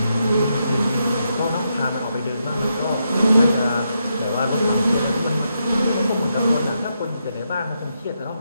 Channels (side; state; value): both; inverted; correlation -0.82